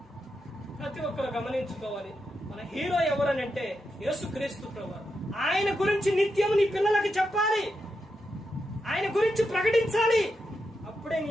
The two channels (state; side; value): normal; both; correlation 0.86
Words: ప్రతి ఒక్కరు గమనించుకోవాలి, మన హీరో ఎవరనంటే యేసుక్రీస్తు ప్రభువు. ఆయన గురించి నిత్యం నీ పిల్లలకి చెప్పాలి, ఆయన గురించి ప్రకటించాలి. అప్పుడే